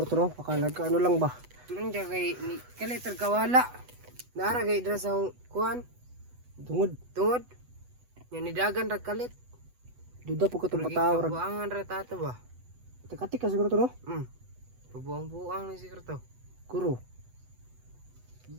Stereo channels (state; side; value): late; left; 8.1 ms